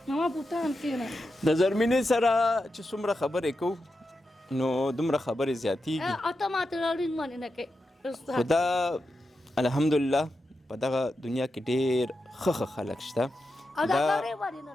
ما پوتان کېنه د زرمینې سره چې څومره خبرې کوو نو دومره خبرې زیاتېږي ته ما ته راړین باندې نه کوې خو دا الحمدلله په دغه دنیا کې ډېر ښه خلک شته دا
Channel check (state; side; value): normal; both; correlation 0.89